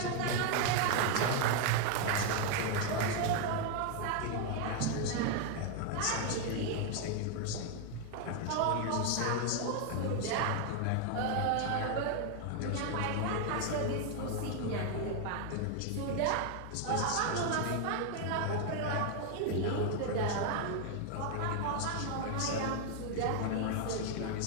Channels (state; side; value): different; both; correlation 0.00